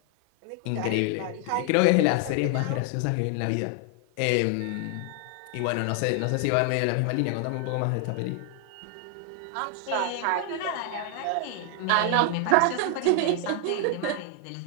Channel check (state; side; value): different; both; correlation 0.00